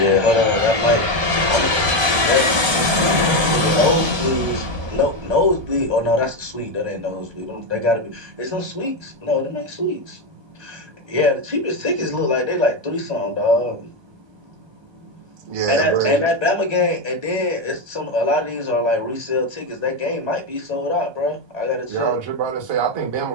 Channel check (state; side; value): late; left; 1.3 ms